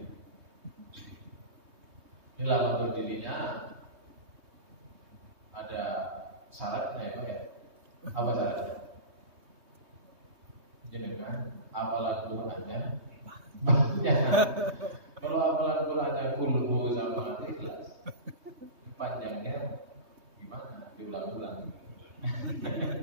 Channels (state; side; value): late; left; 3.2 ms